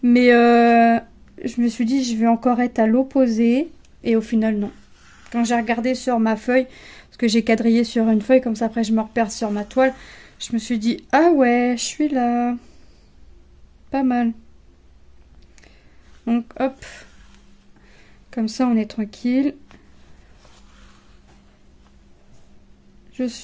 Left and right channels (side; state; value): both; identical; correlation 1.00